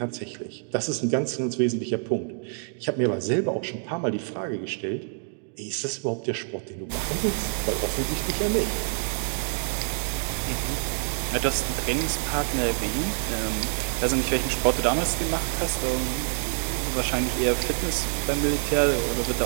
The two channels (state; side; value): silent; left; 60 dB below the other